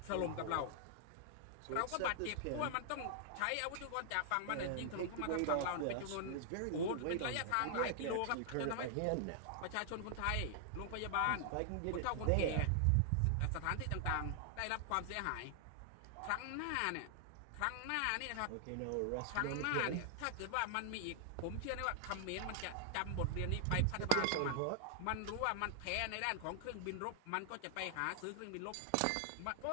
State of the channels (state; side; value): different; both; correlation -0.01